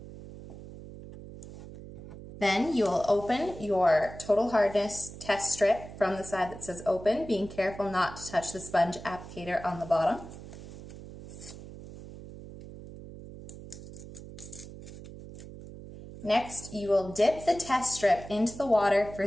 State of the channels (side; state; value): right; noise; hum, 14 dB below the sound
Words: Then you will open your total hardness test strip from the side that says open, being careful not to touch the sponge applicator on the bottom. Next, you will dip the test strip into the water for